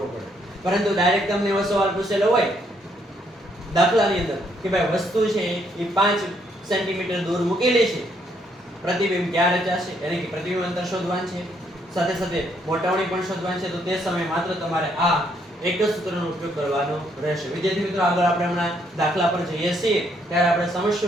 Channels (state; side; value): normal; both; correlation 0.71